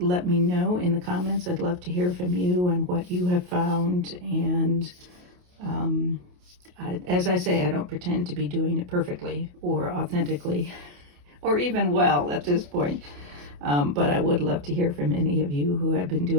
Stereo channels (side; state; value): left; late; 28 ms